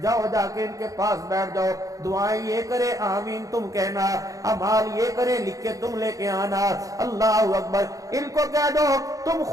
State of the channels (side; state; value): left; late; 0.17 ms